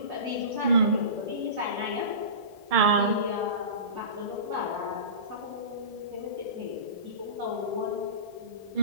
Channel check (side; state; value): left; late; 1.7 ms